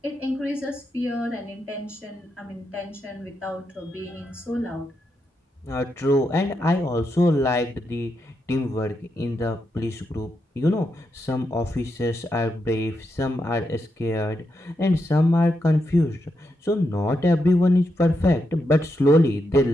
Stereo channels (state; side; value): normal; both; correlation 0.83